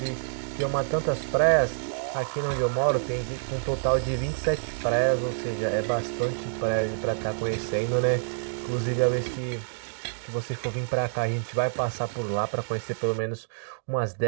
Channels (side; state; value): left; silent; digital silence